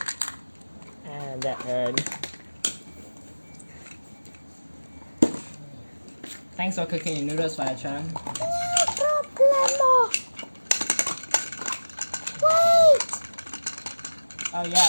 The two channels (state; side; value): inverted; both; correlation -1.00